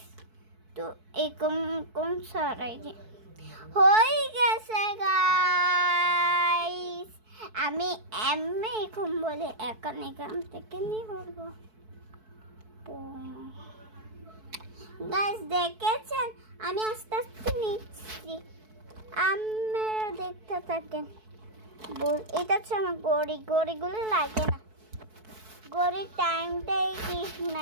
তো এরকম সরাই দি, হয়ে গেছে গাইস। আমি এখন বলে এখান থেকে নিয়ে বলবো। গাইস দেখেছেন, আমি আস্তে আস্তে নিচ্ছি, আপনারা দেখতে থাকেন। এটা হচ্ছে আমার গড়িগুলো লাগে না, গড়ির টাইমটাই ঠিক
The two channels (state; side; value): late; left; 4.6 ms